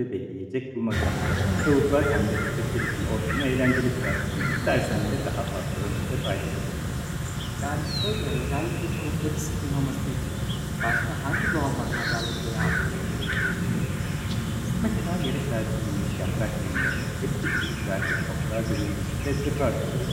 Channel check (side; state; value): both; identical; correlation 1.00